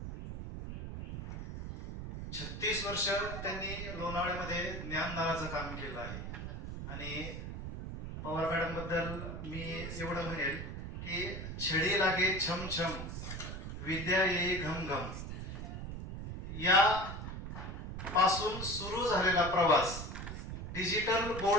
36 वर्ष त्यांनी लोणावळ्यामध्ये ज्ञानदानाचं काम केलं आहे. आणि पवार मॅडम बद्दल मी एवढं म्हणेल की छडी लागे छम छम, विद्या येई घम घम, या पासून सुरू झालेला प्रवास डिजिटल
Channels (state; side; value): noise; right; rumble, 7 dB below the sound